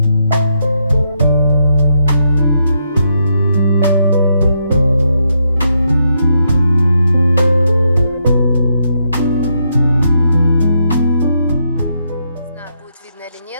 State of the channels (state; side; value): inverted; both; correlation -0.79